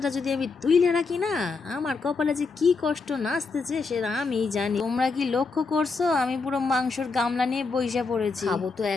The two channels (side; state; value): right; quieter; 4.4 dB